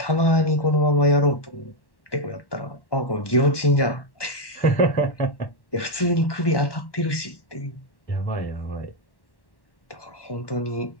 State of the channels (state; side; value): late; right; 1.2 ms